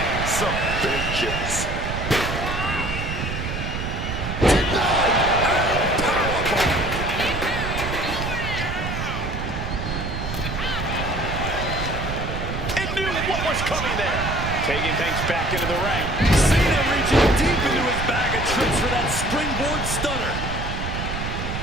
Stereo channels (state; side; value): noise; right; rumble, 4 dB below the sound